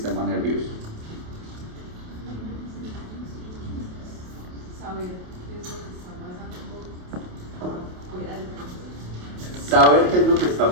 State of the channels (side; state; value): left; late; 28 ms